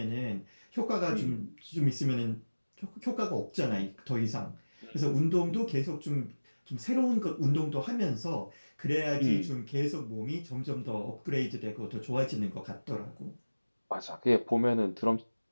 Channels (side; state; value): both; inverted; correlation -1.00